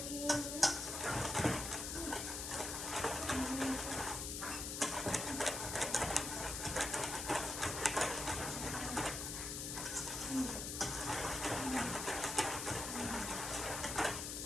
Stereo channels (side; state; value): left; noise; hiss, 4 dB below the sound